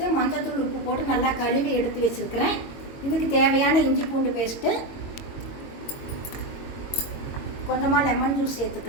மஞ்சள்தூள் உப்பு போட்டு நல்லா கழுவி எடுத்து வச்சுருக்கிறேன். இதுக்கு தேவையான இஞ்சி பூண்டு பேஸ்ட்டு, கொஞ்சமாக லெமன் ஜூஸ்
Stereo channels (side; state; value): right; late; 22 ms